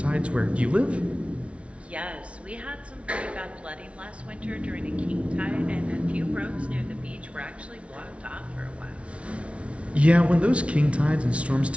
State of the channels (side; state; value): left; late; 0.062 ms